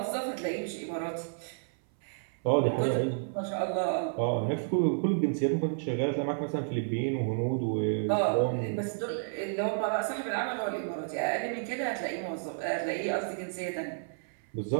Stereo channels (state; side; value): silent; left; 57 dB below the other